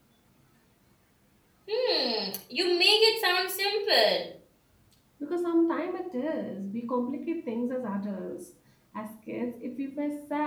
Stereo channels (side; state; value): both; identical; correlation 1.00